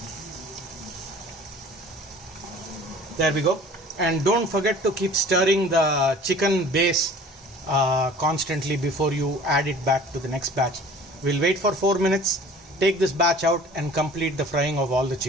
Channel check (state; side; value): normal; both; correlation 0.46